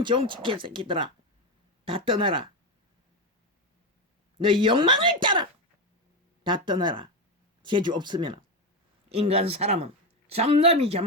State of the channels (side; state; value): both; normal; correlation 0.13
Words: 정치 개새끼들아, 다 떠나라. 너희 욕망을 따라 다 떠나라. 재주 없으면 인간 사람은